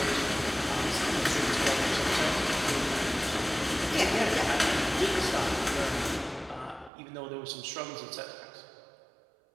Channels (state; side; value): drops out; left; at 6.9 s